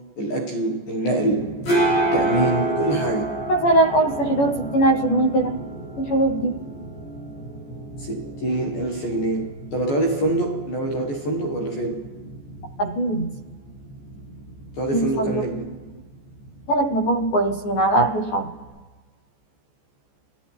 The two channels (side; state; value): right; late; 14 ms